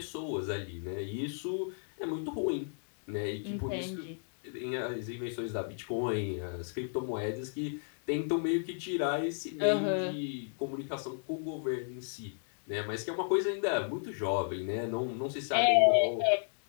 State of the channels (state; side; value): silent; right; digital silence